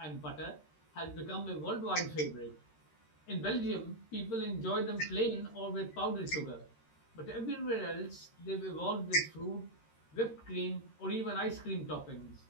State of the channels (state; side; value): late; right; 13 ms